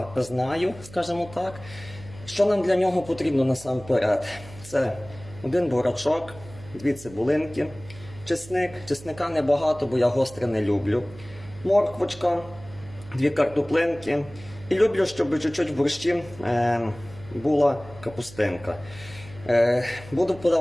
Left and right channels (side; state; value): right; noise; hum, 18 dB below the sound